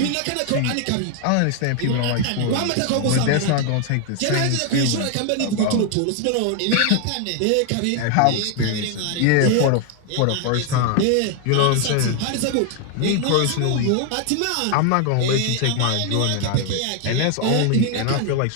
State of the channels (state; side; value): different; both; correlation 0.01